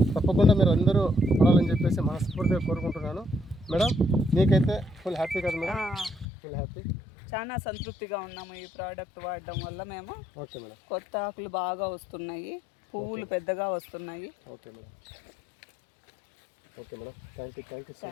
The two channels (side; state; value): right; drops out; at 6.2 s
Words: తప్పకుండా మీరు అందరూ పడాలని చెప్పేసి మనస్ఫూర్తిగా కోరుకుంటున్నాను. మేడం మీకైతే ఫుల్ హ్యాపీ కదా మేడం? ఫుల్ హ్యాపీ, చాలా సంతృప్తిగా ఉన్నాము ఈ ప్రోడక్ట్ వాడడం వల్ల. మేము ఓకే మేడం. కొత్త ఆకులు బాగా వస్తున్నాయి, పువ్వులు పెద్దగా వస్తున్నాయి. Okay madam. Okay madam, thank you so